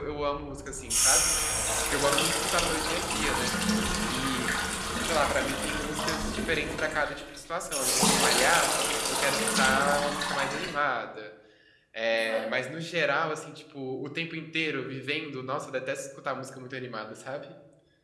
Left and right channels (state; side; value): identical; both; correlation 1.00